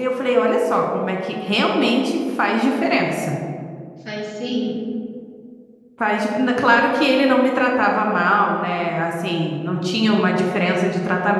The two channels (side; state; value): both; identical; correlation 1.00